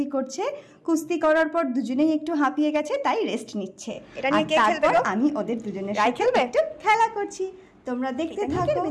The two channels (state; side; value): identical; both; correlation 1.00